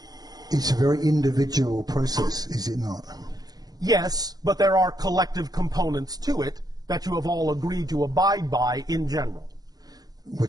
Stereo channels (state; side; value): late; left; 0.19 ms